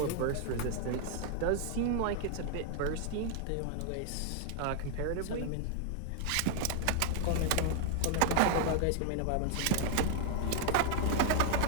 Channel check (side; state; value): both; different; correlation 0.00